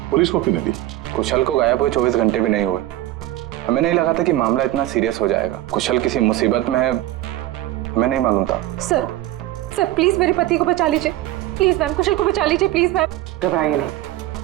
पुलिस को क्यों नहीं दी? कुशल को गायब हुए 24 घंटे भी नहीं हुए। हमें नहीं लगा था कि मामला इतना सीरियस हो जाएगा। कुशल किसी मुसीबत में है, हमें नहीं मालूम था। सर प्लीज मेरे पति को बचा लीजिए। प्लीज मैम, कुशल को बचा लीजिए प्लीज मैम। घबराइए नहीं,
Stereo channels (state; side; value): quieter; left; 15.3 dB